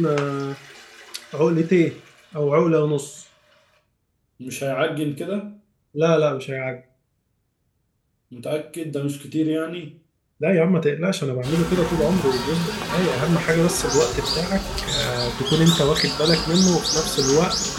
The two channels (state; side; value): identical; both; correlation 1.00